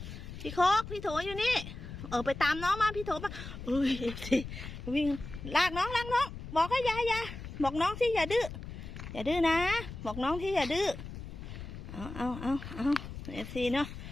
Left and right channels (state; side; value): noise; left; rumble, 10 dB below the sound